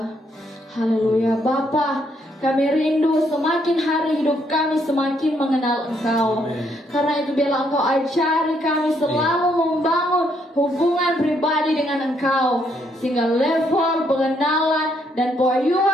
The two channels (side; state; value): both; normal; correlation 0.72